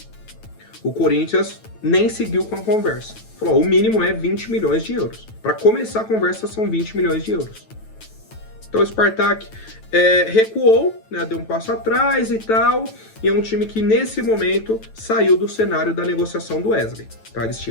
O Corinthians nem seguiu com a conversa. Falou, o mínimo é 20 milhões de euros. Para começar a conversa são 20 milhões de euros. Então o Spartak recuou, né, deu um passo atrás e tal, e é um time que nesse momento saiu do cenário da negociação do Wesley. Tá? Eles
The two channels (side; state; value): right; late; 9.1 ms